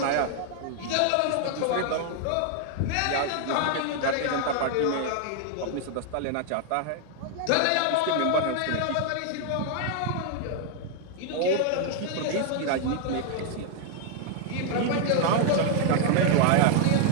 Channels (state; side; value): different; both; correlation 0.00